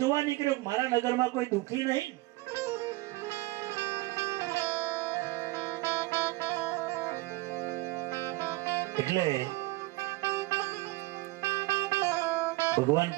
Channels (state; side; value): quieter; left; 20.5 dB